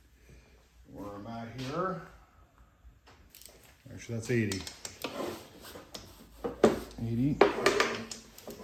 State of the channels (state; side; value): identical; both; correlation 1.00